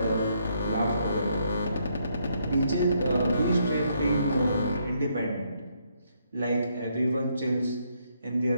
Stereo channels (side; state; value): both; inverted; correlation -0.73